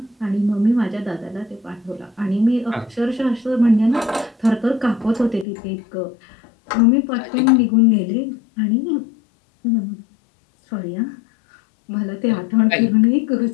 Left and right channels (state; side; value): drops out; right; at 5.5 s